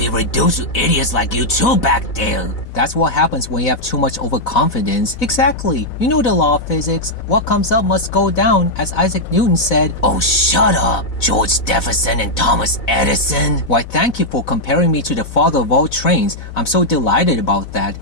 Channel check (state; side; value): late; right; 4.0 ms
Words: reduced to idiots like you two back there? That's what happens when you have too much overconfidence. Exactly. You know the law of physics. What comes up must go down, as Isaac Newton said. Oh, shut up, George Jefferson and Thomas Edison. Why, thank you for comparing me to the father of all trains. I'm so delighted about that.